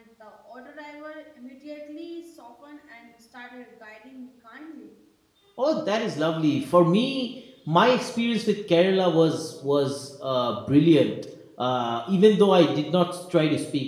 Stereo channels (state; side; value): identical; both; correlation 1.00